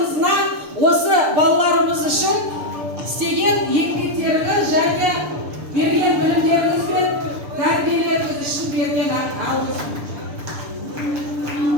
осы балаларымыз үшін істеген еңбектеріңіз және берген білімдеріңіз бен тәрбиелеріңіз үшін берген алғыс.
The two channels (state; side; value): late; left; 6.8 ms